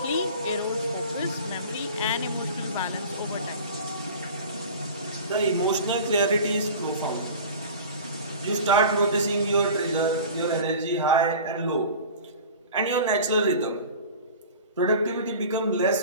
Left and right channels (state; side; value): inverted; both; correlation -0.38